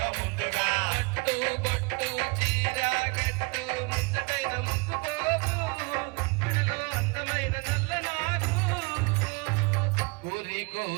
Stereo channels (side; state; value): left; quieter; 29.5 dB